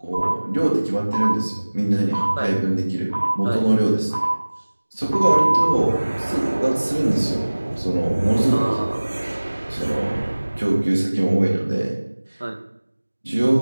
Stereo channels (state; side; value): inverted; both; correlation -1.00